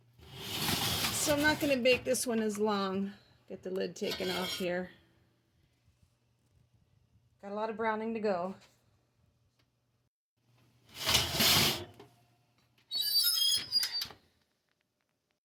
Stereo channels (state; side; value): identical; both; correlation 1.00